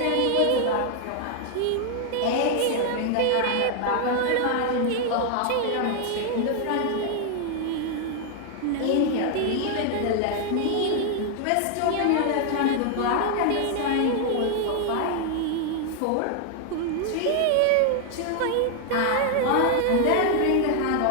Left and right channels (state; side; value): different; both; correlation 0.00